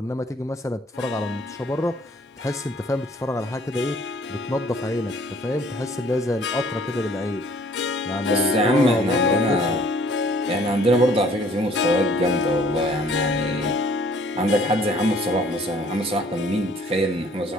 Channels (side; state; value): both; normal; correlation 0.57